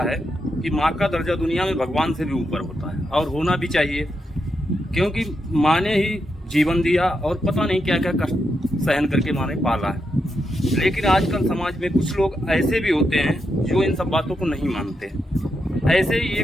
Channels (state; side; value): normal; both; correlation 0.84